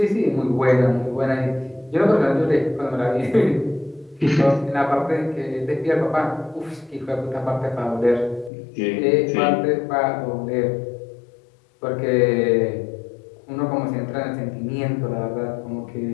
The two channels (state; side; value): drops out; right; at 8.5 s